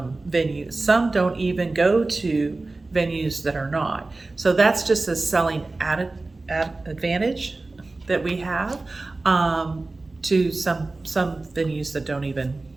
venue? Some don't even go to venues that are not. So that's just a selling advantage that we have to some venues that don't even,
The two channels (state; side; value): quieter; left; 3.3 dB